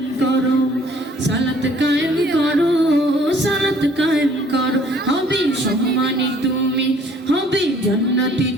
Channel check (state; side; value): normal; both; correlation 0.57